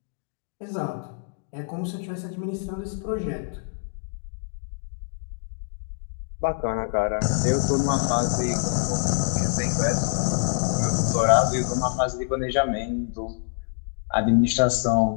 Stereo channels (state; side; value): silent; right; digital silence